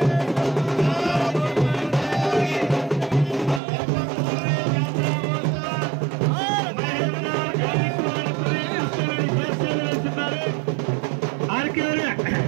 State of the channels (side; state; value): left; drops out; at 3.6 s